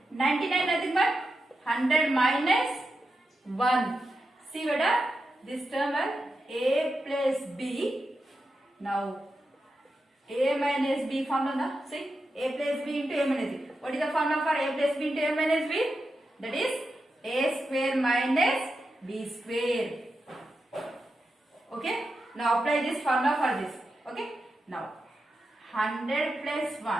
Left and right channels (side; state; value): both; normal; correlation 0.88